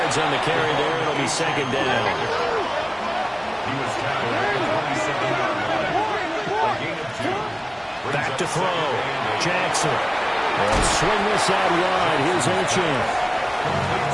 on the carry there. It'll be 2nd down. He was tackled at the 27-yard line. A gain of 2. Back to throw. Jackson. And swing this out wide. Here's Ochan.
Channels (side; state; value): both; identical; correlation 1.00